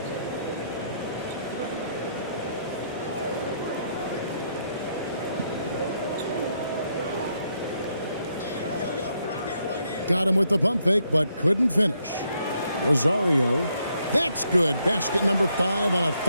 Got him with the pump fake, but couldn't finish. Rosario. That's good. Basket number 5 on a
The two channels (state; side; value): inverted; both; correlation -0.75